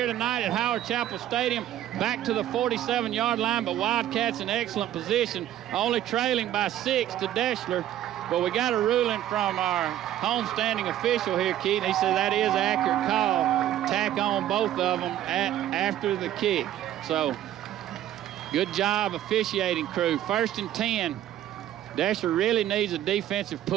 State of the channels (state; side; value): quieter; left; 12.3 dB